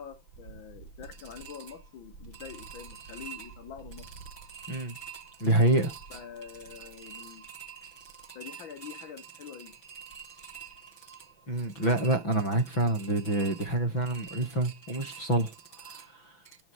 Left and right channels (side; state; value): right; late; 6.0 ms